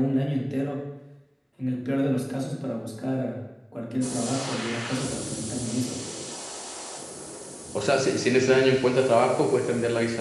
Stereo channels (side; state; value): both; identical; correlation 1.00